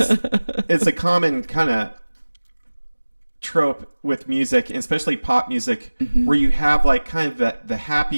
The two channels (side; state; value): both; inverted; correlation -1.00